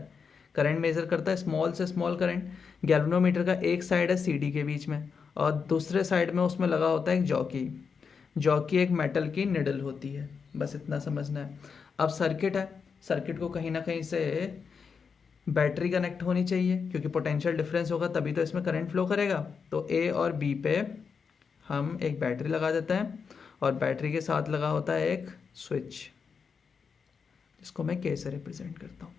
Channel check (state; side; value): quieter; right; 5.8 dB